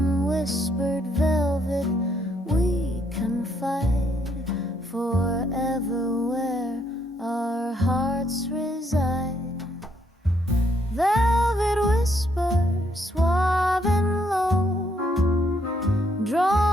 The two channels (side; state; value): both; normal; correlation 0.72